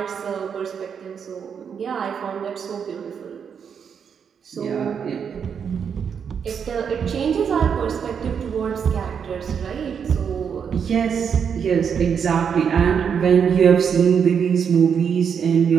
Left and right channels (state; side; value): quieter; left; 7.1 dB